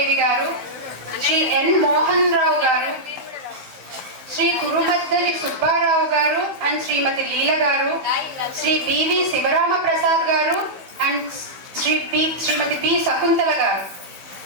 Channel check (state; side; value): late; left; 15 ms